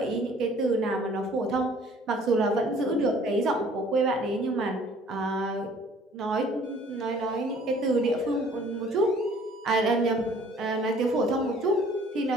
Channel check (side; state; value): both; normal; correlation 0.55